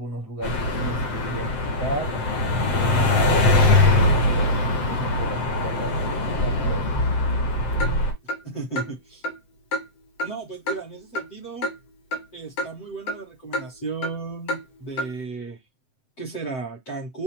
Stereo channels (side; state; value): right; late; 7.8 ms